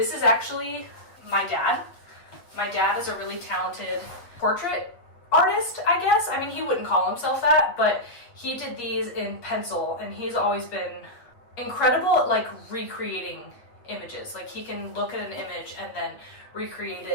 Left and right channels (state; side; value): late; right; 8.6 ms